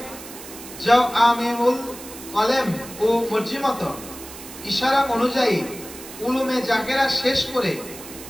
জাওআমিউল কলম ও মর্জিমত ইশারা অনুযায়ী উলুমে জাকেরা শেষ করে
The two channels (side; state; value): right; noise; hiss, 14 dB below the sound